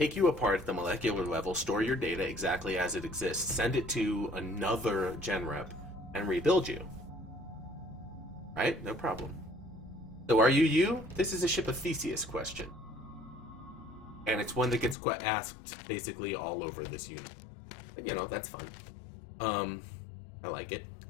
you apart at the molecular level, store your data exactly as it exists, send it to another gen rep, and rebuild you. Right? No problem. So are you you? This is a Ship of Theseus question. And it's one that gets asked basically all over this unit. But, you know, that's fun. I like it.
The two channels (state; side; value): drops out; right; at 15.0 s